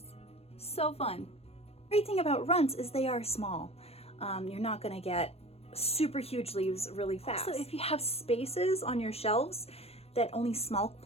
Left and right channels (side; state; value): right; late; 0.29 ms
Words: So fun. Great thing about runts is they are small. You're not gonna get super huge leaves really fast. So if you have spaces on your shelves that only small